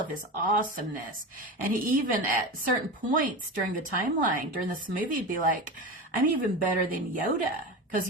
his awesomeness. And he even at certain points during the timeline, during this movie, he'd be like, I'm even better than Yoda, because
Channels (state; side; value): normal; both; correlation 0.25